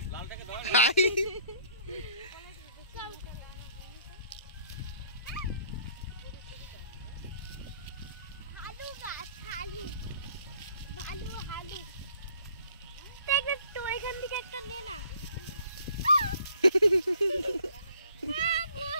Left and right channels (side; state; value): both; inverted; correlation -0.58